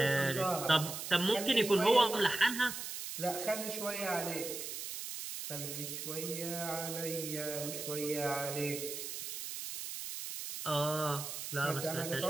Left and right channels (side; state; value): right; noise; hiss, 6 dB below the sound